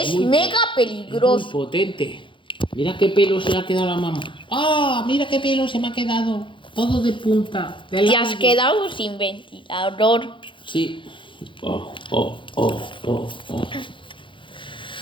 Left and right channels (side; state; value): right; late; 0.24 ms